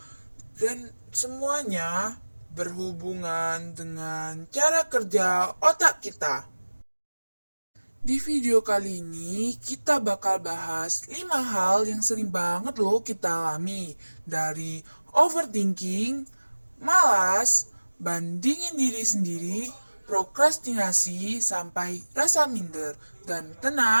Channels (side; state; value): both; inverted; correlation -1.00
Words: Dan semuanya berhubungan dengan cara kerja otak kita. Di video kali ini kita bakal bahas 5 hal yang sering banget loh kita alami. Dari overthinking, malas, bandingin diri sendiri, prokrastinasi, sampai rasa minder. Dan